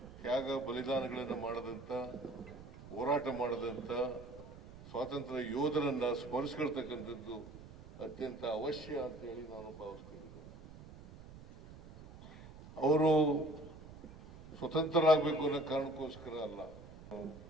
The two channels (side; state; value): right; noise; rumble, 17 dB below the sound